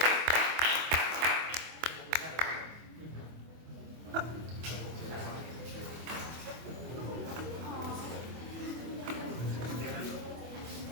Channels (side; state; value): left; late; 24 ms